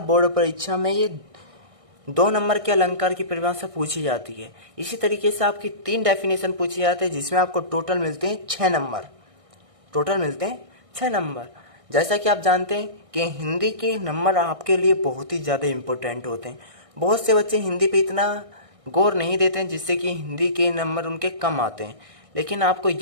बोर्ड परीक्षा में ये 2 नंबर के अलंकार की परिभाषा पूछी जाती है। इसी तरीके से आपकी 3 डेफिनेशन पूछी जाती है, जिसमें आपको टोटल मिलते हैं 6 नंबर। टोटल मिलते हैं 6 नंबर। जैसा कि आप जानते हैं कि हिंदी के नंबर आपके लिए बहुत ही ज़्यादा इम्पोर्टेंट होते हैं। बहुत से बच्चे हिंदी पे इतना गौर नहीं देते हैं, जिससे कि हिंदी के नंबर उनके कम आते हैं। लेकिन आपको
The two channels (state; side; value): late; left; 1.6 ms